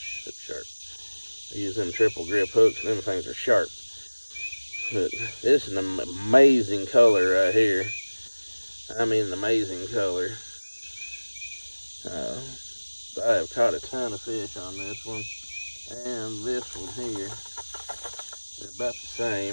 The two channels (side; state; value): both; inverted; correlation -1.00